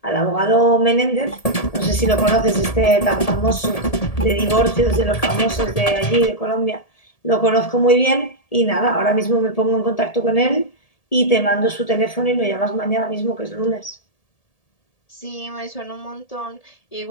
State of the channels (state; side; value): late; right; 1.8 ms